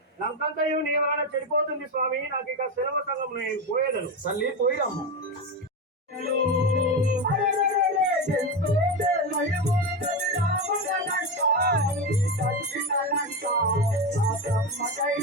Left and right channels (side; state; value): both; normal; correlation 0.16